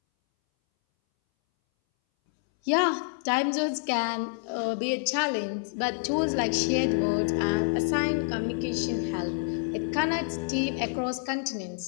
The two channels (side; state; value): right; silent; 59 dB below the other